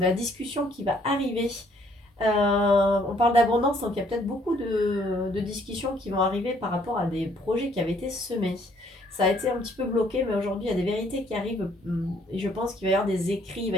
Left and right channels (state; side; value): normal; both; correlation 0.64